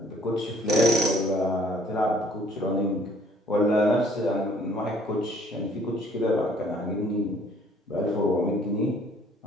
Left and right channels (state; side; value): normal; both; correlation 0.59